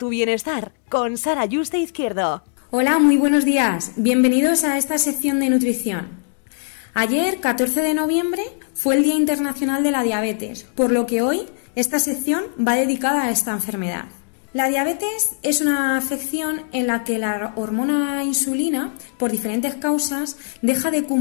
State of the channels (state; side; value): silent; right; digital silence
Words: bienestar con Sara Yuste Izquierdo. Hola, muy buenos días. Bienvenidos a esta sección de nutrición. Ayer, 14 de noviembre, fue el Día Internacional de la Diabetes, por lo que hoy esta sección va dedicada a esta enfermedad. La diabetes es una afección en la que la hormona insulina, por diferentes causas, deja de